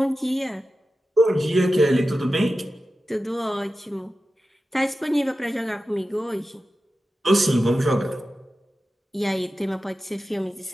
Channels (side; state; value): both; normal; correlation 0.93